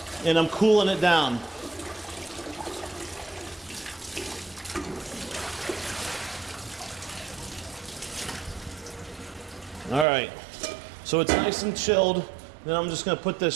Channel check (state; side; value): drops out; left; at 10.1 s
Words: and I'm cooling it down. All right, so it's nice and chilled. Then I'm just going to put